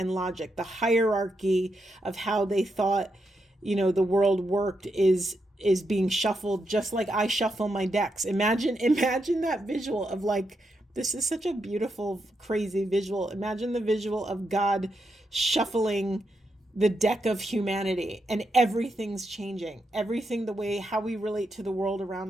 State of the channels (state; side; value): normal; both; correlation 0.83